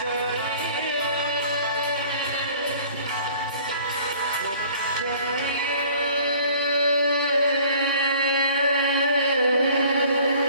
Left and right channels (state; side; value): inverted; both; correlation -0.51